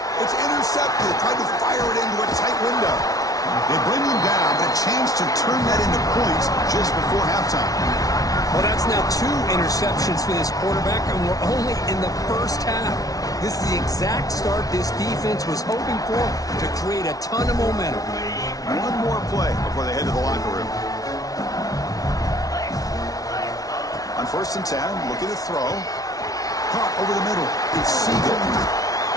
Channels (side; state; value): right; late; 0.18 ms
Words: It's intercepted. Tried to fire it into a tight window. They bring him down, but a chance to turn that into points just before halftime. Well, that's now 2 interceptions for this quarterback, and we're only in the first half. This is the exact start this defense was hoping for to create a ton of momentum. One more play before they head to the locker room. On 1st and 10, looking to throw. Caught over the middle. It's Siegel.